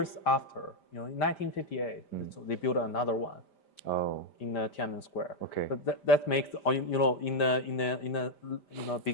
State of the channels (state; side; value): late; right; 5.0 ms